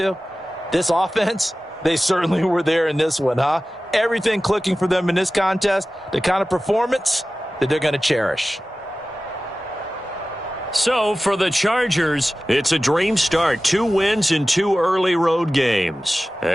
This offense, they certainly were there in this one, huh? Everything clicking for them in this contest, the kind of performance that they're going to cherish. So, for the Chargers, it's a dream start. 2 wins in 2 early road games.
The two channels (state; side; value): normal; both; correlation 0.96